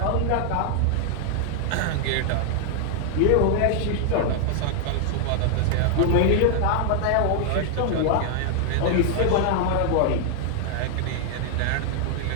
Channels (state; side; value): different; both; correlation 0.00